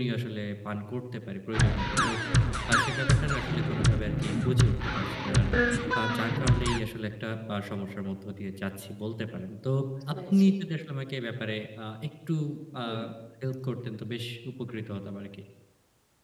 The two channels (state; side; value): identical; both; correlation 1.00